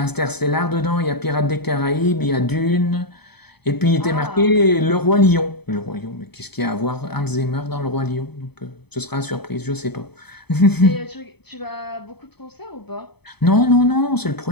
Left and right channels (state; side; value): late; right; 0.98 ms